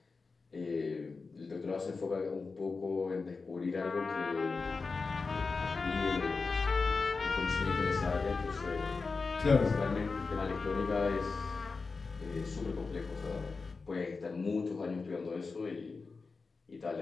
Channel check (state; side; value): quieter; right; 4.3 dB